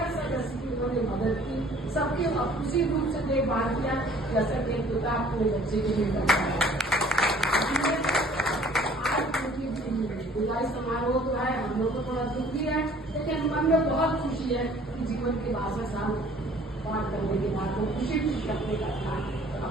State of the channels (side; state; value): both; normal; correlation 0.54